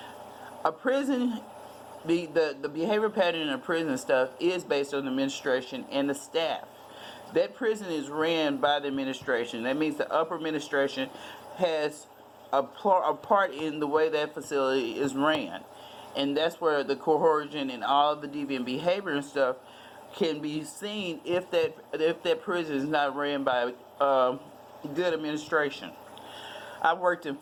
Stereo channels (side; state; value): both; identical; correlation 1.00